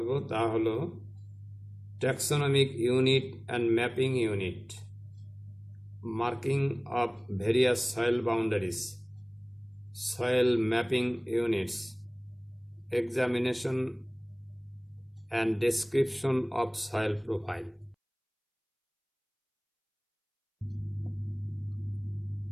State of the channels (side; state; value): both; identical; correlation 1.00